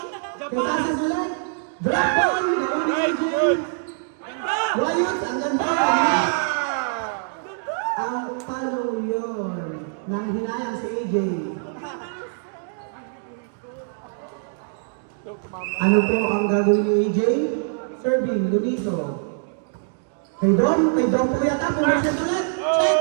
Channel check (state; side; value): silent; left; digital silence